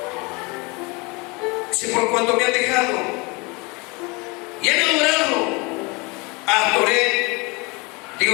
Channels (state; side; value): quieter; right; 27.7 dB